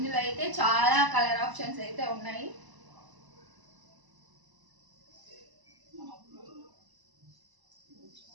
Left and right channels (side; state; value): left; late; 1.0 ms